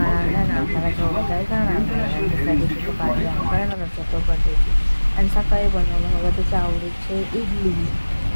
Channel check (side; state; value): both; inverted; correlation -1.00